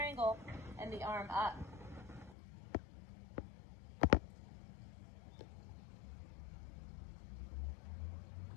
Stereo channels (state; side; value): drops out; right; at 2.4 s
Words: and the arm up.